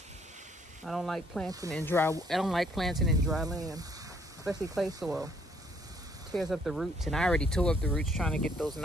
I don't like planting in dry. I don't like planting in dry land, especially clay soil. Tears up the roots, and I already tore up the roots trying to get those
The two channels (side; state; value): both; normal; correlation 0.66